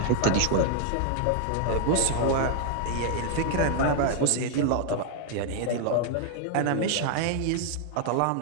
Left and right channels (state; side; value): different; both; correlation -0.01